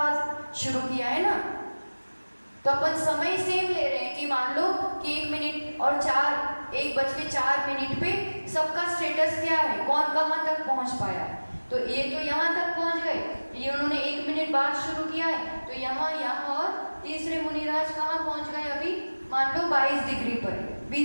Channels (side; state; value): both; inverted; correlation -1.00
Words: शुरू किया है ना, तो अपन समय सेम ले रहे हैं कि मान लो कि 1 मिनट और 1:04 पे सबका स्टेटस क्या है, कौन कहाँ तक पहुंच पाया है। तो ये तो यहाँ तक पहुंच गए, ये उन्होंने 1 मिनट बाद शुरू किया है, तो यहाँ और तीसरे मुनिराज कहाँ पहुंच गए? अभी मान लो 22 डिग्री पर,